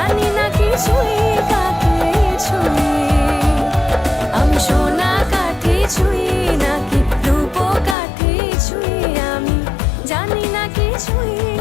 না কি ছুঁই কাকে ছুঁই। আমি সোনা কাঠি ছুঁই নাকি রূপ কাঠি ছুঁই, আমি জানি না কি ছুঁই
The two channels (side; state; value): right; drops out; at 8.0 s